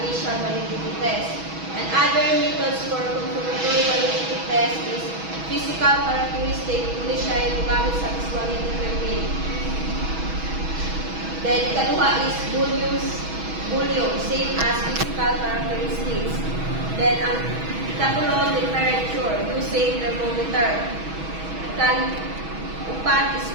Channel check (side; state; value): left; late; 6.2 ms